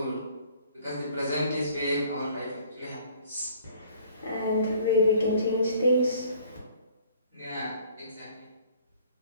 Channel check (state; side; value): inverted; both; correlation -0.55